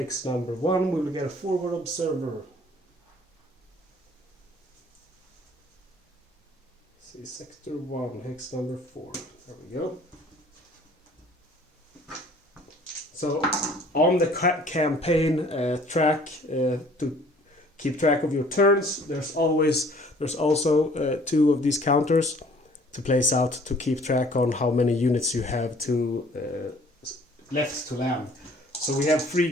number 1, we will get a forward observer. See, sector 1, hex number 4. There we go. So on the campaign track, to keep track of your turns, there's also 2 of these counters to place out to keep track on how many units you have to left to land. So we have 3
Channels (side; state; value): both; normal; correlation 0.55